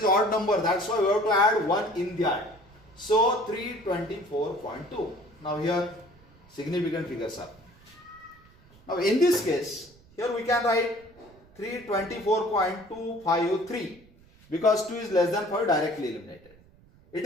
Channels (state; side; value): noise; right; rumble, 27 dB below the sound